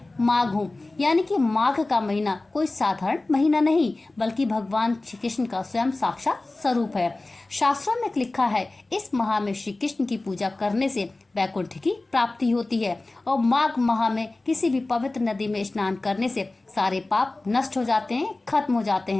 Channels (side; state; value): right; quieter; 3.0 dB